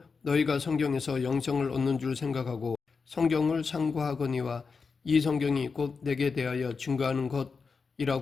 너희가 성경에서 영생을 얻는 줄 생각하고 성경을 상고하거니와 이 성경이 곧 내게 대하여 증거하는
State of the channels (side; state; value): right; quieter; 5.0 dB